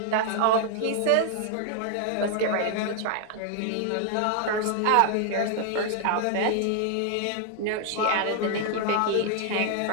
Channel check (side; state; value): both; different; correlation 0.00